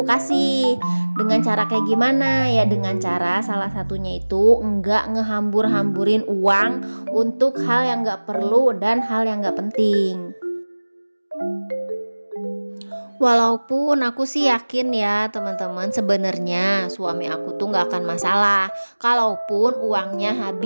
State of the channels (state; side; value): inverted; both; correlation -1.00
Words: kasih. Dengan cara kayak gimana? Ya dengan cara salah satunya itu enggak ngehambur-hamburin uang untuk hal yang enggak perlu dan hal yang enggak penting. Walaupun aku sih yakin ya teman-teman, sebenarnya suami aku tuh nggak akan masalah kalaupun uangnya